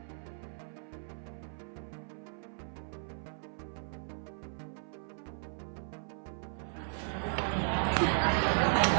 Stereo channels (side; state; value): left; silent; 54 dB below the other